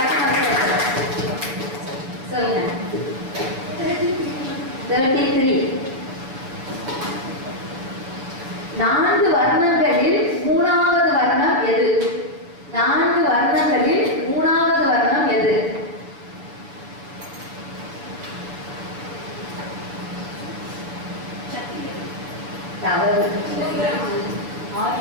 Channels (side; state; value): left; late; 7.2 ms